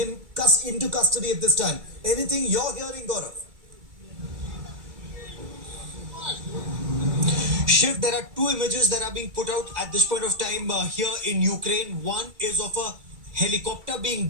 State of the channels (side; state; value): left; late; 2.3 ms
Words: into custody at this time. Anything you're hearing, Gaurav? Shiv, there are two images that are being put out at this point of time here in Ukraine. One is of a helicopter